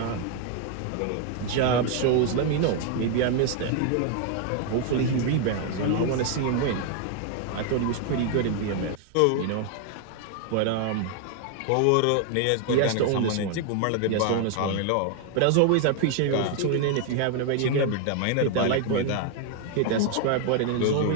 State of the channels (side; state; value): both; different; correlation 0.00